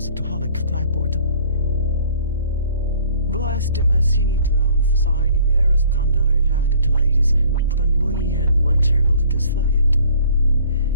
to holic clapboard. Blessed him as he drowned for signing mirrors thunder had it ladies, but we and one terrible to disflight.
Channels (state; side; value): inverted; both; correlation -0.53